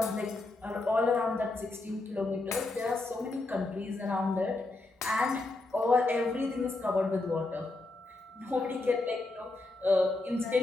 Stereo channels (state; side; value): quieter; right; 3.1 dB